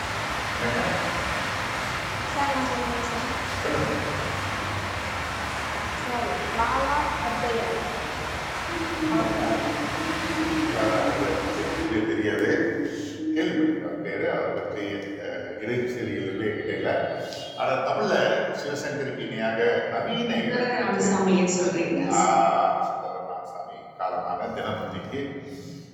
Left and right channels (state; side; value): identical; both; correlation 1.00